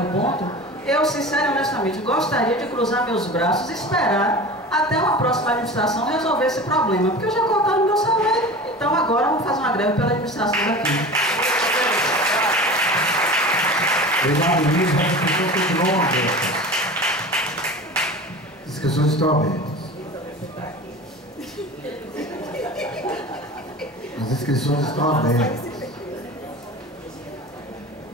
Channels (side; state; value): both; normal; correlation 0.35